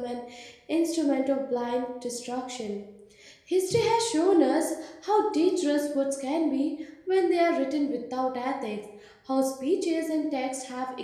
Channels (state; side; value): identical; both; correlation 1.00